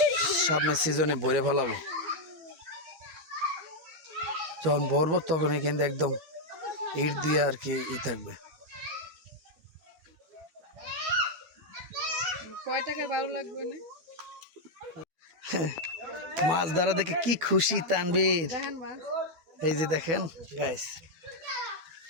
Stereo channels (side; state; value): left; late; 12 ms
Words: সামনের সিজনে ভরে ফেলাবো যখন ভরবো তখনই কিন্তু একদম ইট দিয়ে আর কি থাকবে কয় টাকা ভালো লাগবে না মাছ ধরা দেখে কি খুশি তানবীর দেখেন মাছ এই যে দেখেন গাইস